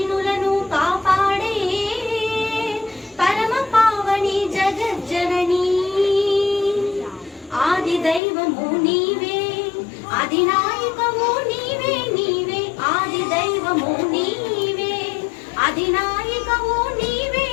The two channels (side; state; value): right; drops out; at 8.2 s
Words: కాపాడే పరమ పావని జగజ్జనని ఆది దైవము నీవే అధినాయకము నీవే నీవే ఆది దైవము నీవే అధినాయకము నీవే